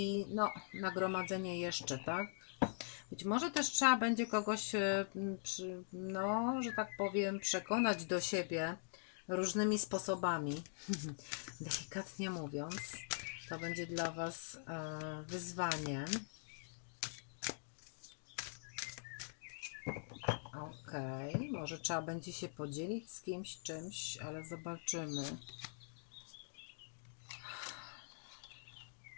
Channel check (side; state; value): right; silent; digital silence